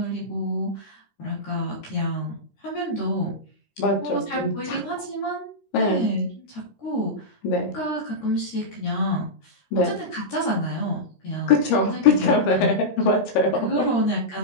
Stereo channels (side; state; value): right; late; 13 ms